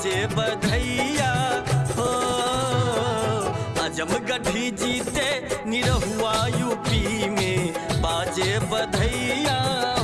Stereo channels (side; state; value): both; identical; correlation 1.00